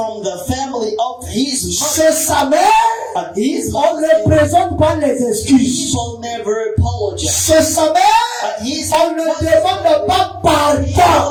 the family of his mother, Chez sa mère, his on ne mother, présente pas les excuses. people never apologize. Chez sa mère, His on ne demande pas pardon.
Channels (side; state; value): both; identical; correlation 1.00